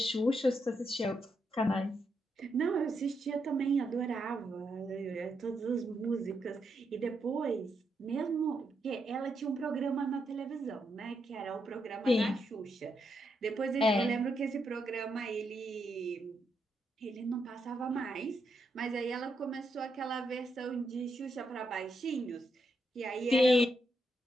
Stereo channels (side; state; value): both; normal; correlation 0.81